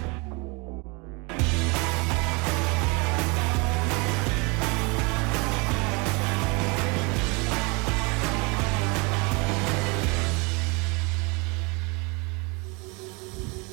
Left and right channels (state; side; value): quieter; left; 29.1 dB